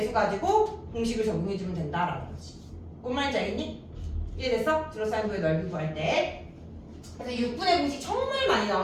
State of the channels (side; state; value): both; identical; correlation 1.00